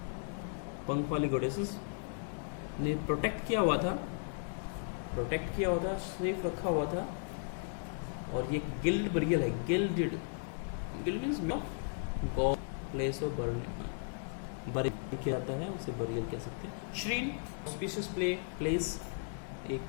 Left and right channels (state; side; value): silent; right; digital silence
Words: पंख वाली गॉडेसेस ने प्रोटेक्ट किया हुआ था, सेफ रखा हुआ था। और ये गिल्ड बरियल है, guild means God, place of burial किया जाता है, उसे बरियल कह सकते हैं। श्रीन ऑस्पिशियस प्लेस, एक